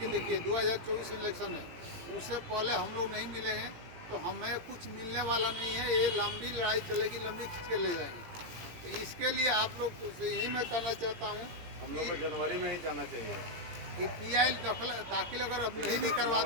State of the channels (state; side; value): late; left; 17 ms